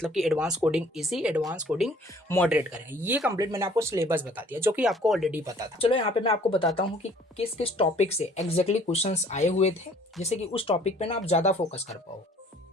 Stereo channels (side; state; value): both; normal; correlation 0.55